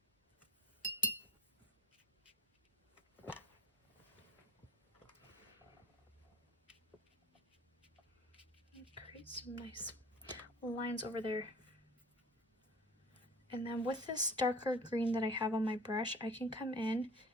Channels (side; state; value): both; normal; correlation 0.44